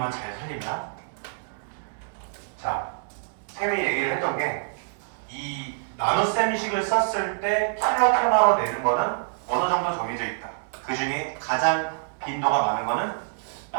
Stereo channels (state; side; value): silent; left; digital silence